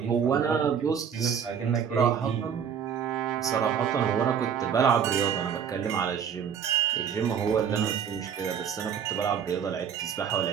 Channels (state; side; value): quieter; left; 7.8 dB